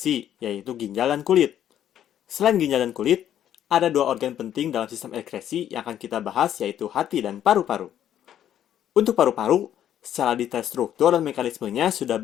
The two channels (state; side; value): quieter; right; 10.7 dB